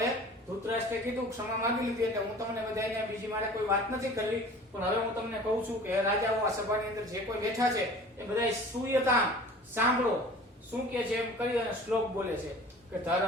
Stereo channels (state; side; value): normal; both; correlation 0.44